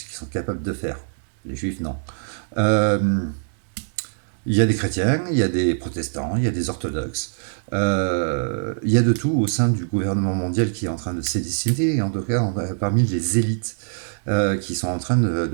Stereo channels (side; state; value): left; silent; digital silence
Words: qu'ils sont capables de faire. Les juifs, non. Euh, il y a des chrétiens, il y a des protestants, il y a des orthodoxes. Il y a de tout au sein du gouvernement mondial qui est en train de s'édiciter, et en tout cas parmi les élites qui sont en train